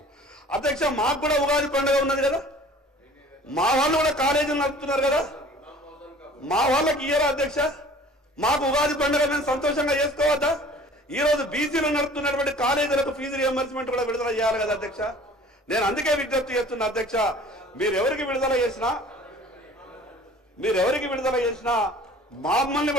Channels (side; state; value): both; normal; correlation 0.47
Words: అధ్యక్ష. మాకు కూడా ఉగాది పండుగ ఉన్నది కదా, మా వాళ్ళు కూడా కాలేజీలు నడుపుతున్నారు కదా, మా వాళ్ళకి ఇయ్యరా అధ్యక్ష? మాకు ఉగాది పండుగ మేము సంతోషంగా చేసుకోవద్దా? ఈ రోజు బీసీలు నడుపుతున్నటువంటి కాలేజీలకు ఫీజు రియంబర్స్మెంట్ కూడా విడుదల చేయాలి కదా అధ్యక్ష. నేను అందుకే విజ్ఞప్తి చేస్తున్నా అధ్యక్ష, మీరు ఎవరికి విడుదల చేసినా మమ్మల్ని